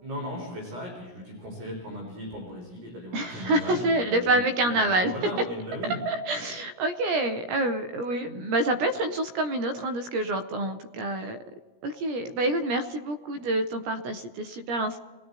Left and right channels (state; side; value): late; left; 17 ms